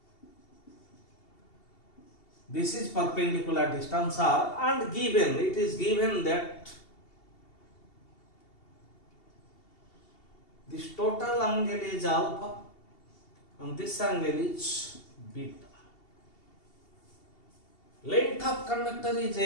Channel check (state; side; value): late; right; 2.7 ms